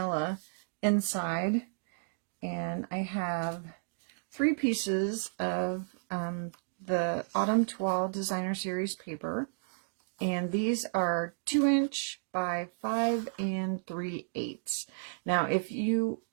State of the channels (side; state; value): left; silent; digital silence